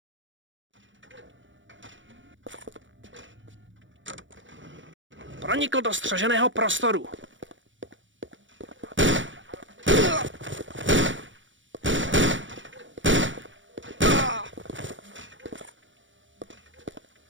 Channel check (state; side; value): late; left; 0.56 ms